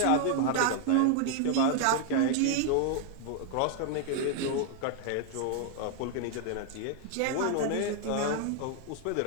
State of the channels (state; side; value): different; both; correlation 0.00